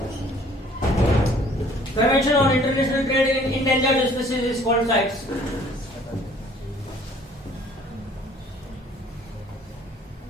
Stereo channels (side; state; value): both; normal; correlation 0.56